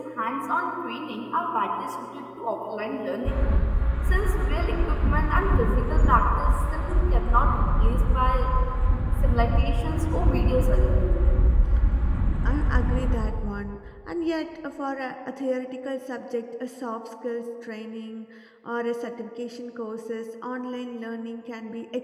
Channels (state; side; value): identical; both; correlation 1.00